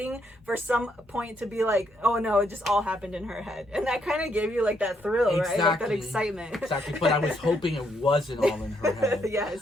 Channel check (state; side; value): normal; both; correlation 0.74